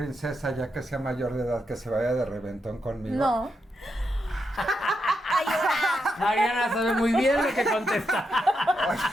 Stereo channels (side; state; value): both; normal; correlation 0.84